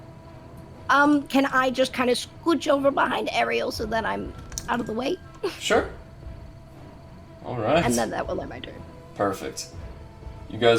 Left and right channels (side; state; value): both; identical; correlation 1.00